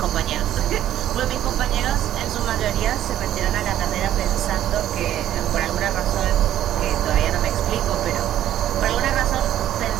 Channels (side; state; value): left; quieter; 12.0 dB